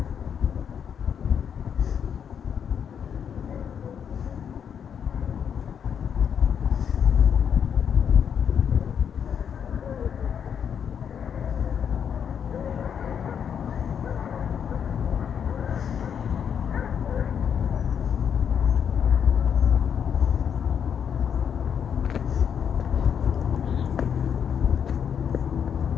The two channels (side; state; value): right; quieter; 7.8 dB